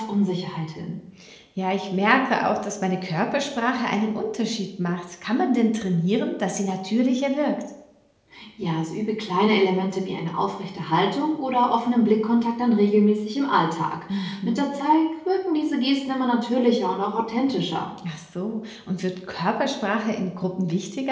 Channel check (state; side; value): identical; both; correlation 1.00